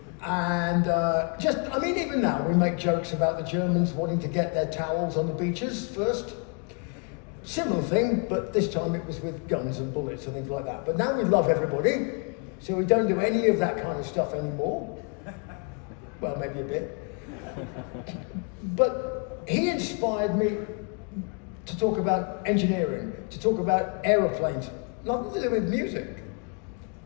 And even now we make jokes about the Germans wanting to get their towels on the beaches first. Similar thing, but this time it was with guns and bullets and things like that. But now we love everybody, so we don't do any of that kind of stuff anymore. Well, maybe a bit. But he inspired me to talk about engineering, to talk about aeroplanes, nothing to do with music.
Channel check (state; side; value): quieter; right; 36.7 dB